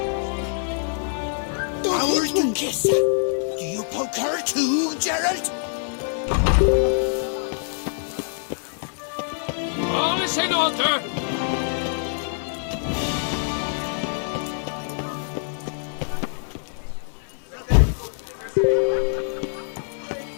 Our Duchessa. Do you poke her too, Geralt? All is in order.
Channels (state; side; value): silent; right; digital silence